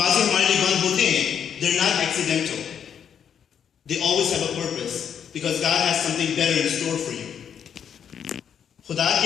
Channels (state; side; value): quieter; right; 8.2 dB